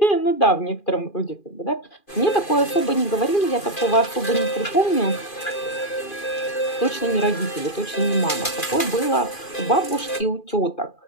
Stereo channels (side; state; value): right; late; 2.4 ms